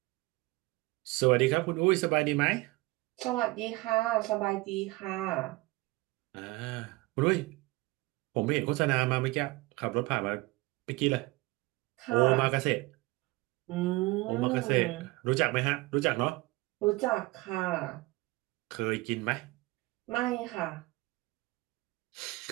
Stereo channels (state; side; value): quieter; left; 21.9 dB